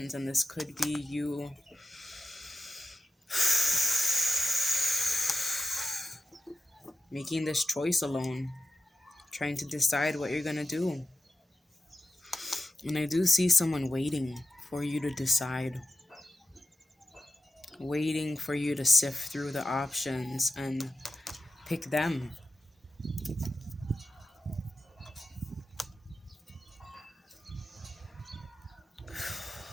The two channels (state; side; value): normal; both; correlation 0.92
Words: And this could be you making this choice alone, trying to decide what you're going to do. And I do see someone waiting for you to decide, waiting for you to sift through the options and pick them.